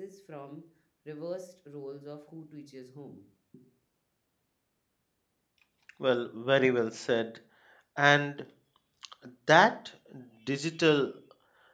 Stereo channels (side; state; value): both; identical; correlation 1.00